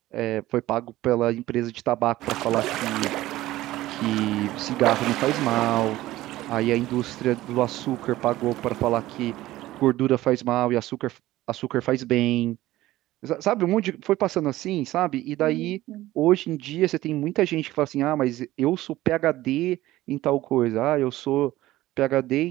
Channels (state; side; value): quieter; left; 16.2 dB